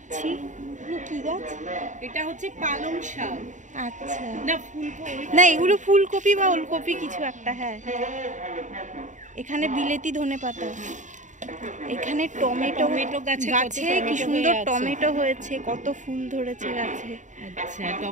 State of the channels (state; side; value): late; left; 0.36 ms